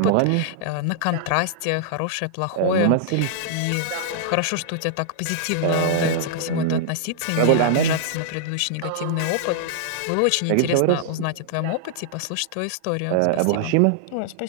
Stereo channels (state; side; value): different; both; correlation -0.01